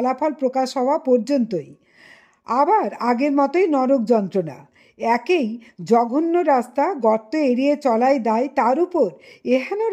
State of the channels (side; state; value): both; identical; correlation 1.00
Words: প্রকাশ হওয়া পর্যন্তই। আবার আগের মতোই নরক যন্ত্রণা। একেই জঘন্য রাস্তা, গর্ত এড়িয়ে চলাই দায়, তার উপর এহেন